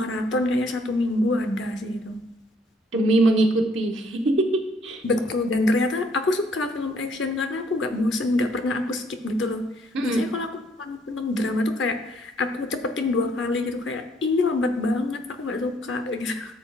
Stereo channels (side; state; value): both; normal; correlation 0.66